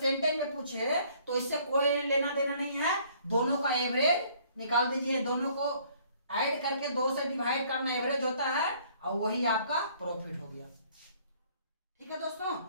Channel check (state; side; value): inverted; both; correlation -0.60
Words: में पूछे तो इससे कोई लेना देना नहीं है, दोनों का एवरेज निकाल दीजिए, दोनों को ऐड करके 2 से डिवाइड करना एवरेज होता है, और वही आपका प्रॉफिट हो गया। ठीक है दोस्तों,